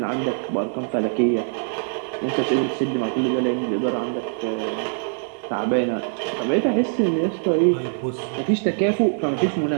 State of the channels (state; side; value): silent; left; 63 dB below the other